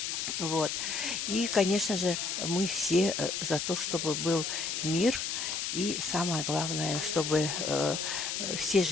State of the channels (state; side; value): noise; left; hiss, 2 dB below the sound